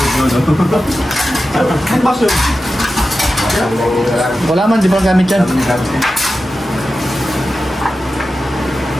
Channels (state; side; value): normal; both; correlation 0.92